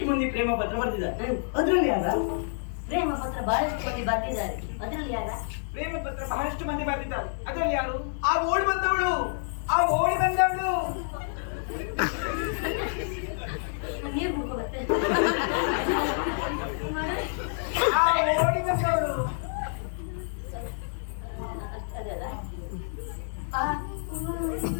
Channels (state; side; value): silent; right; 59 dB below the other